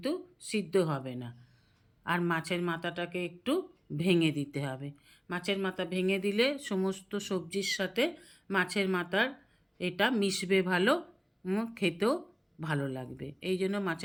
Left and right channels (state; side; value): identical; both; correlation 1.00